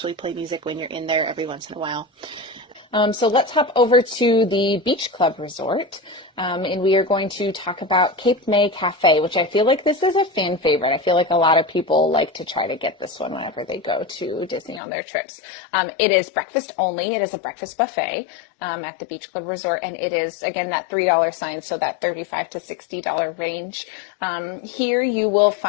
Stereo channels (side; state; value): right; drops out; at 14.8 s